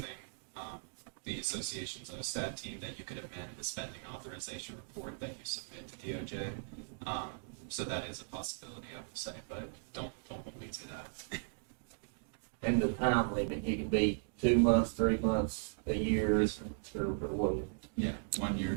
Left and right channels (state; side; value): silent; left; digital silence